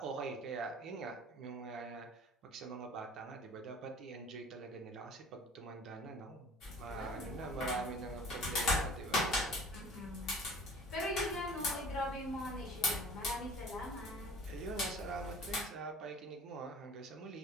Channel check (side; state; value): both; normal; correlation 0.46